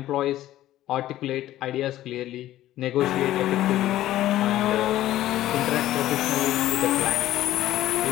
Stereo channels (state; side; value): quieter; right; 14.1 dB